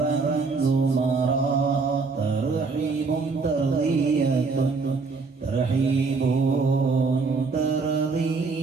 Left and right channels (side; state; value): left; quieter; 4.4 dB